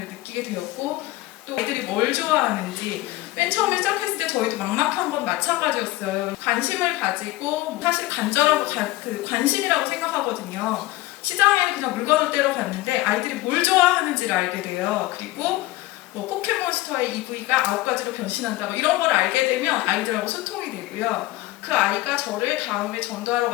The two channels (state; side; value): quieter; right; 18.1 dB